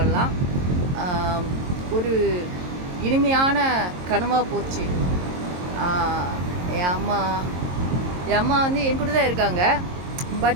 ஒரு இனிமையான கனவாக போச்சு. என் அம்மா வந்து என் கூட தான் இருக்காங்க.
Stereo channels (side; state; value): left; late; 22 ms